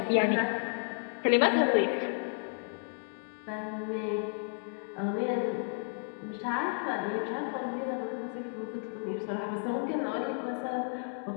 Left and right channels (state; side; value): silent; right; 56 dB below the other